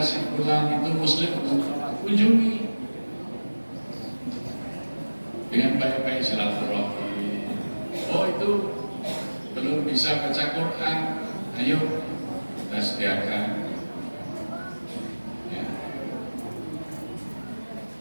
si pulang itu muslim, kunjungi dengan baik-baik silaturahmi. Oh itu belum bisa baca Quran, ayo kita sediakan. Ya.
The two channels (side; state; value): both; inverted; correlation -1.00